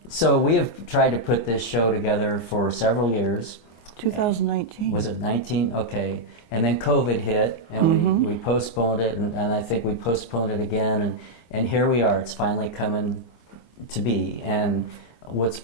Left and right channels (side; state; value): right; late; 24 ms